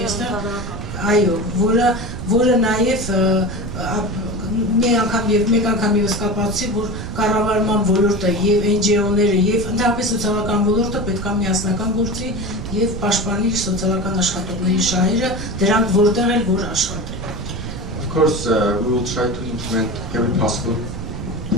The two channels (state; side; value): noise; right; rumble, 7 dB below the sound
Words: այստեղ, այո, որը նաև մեկ անգամ ևս կապացուցի, որ կառավարման ոլորտը եւ NGO-ները եւ ընդհանրապես սոցիալական ոլորտը պետք է միասնական գործի եւ պաշտպանի սոցիալական աշխատողների շահերը, դրանք որտեղ էլ որ աշխատեն։ Of course, we will try to implement every possible